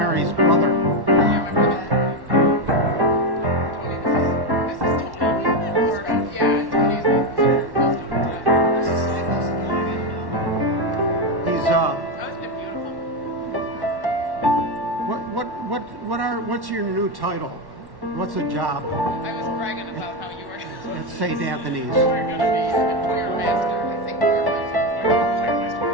brother. He's what's your new title? What's the job I was bragging about how you were at St. Anthony's? going to be a choir master. I think choir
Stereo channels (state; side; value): late; left; 1.1 ms